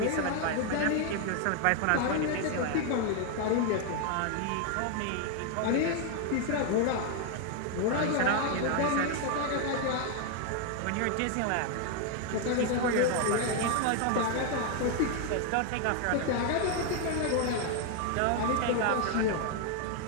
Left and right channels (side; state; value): both; different; correlation 0.01